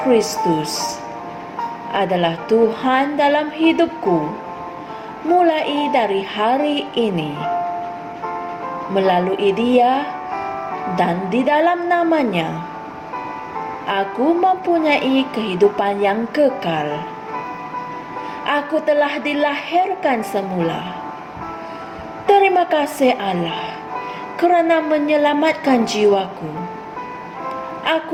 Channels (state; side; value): identical; both; correlation 1.00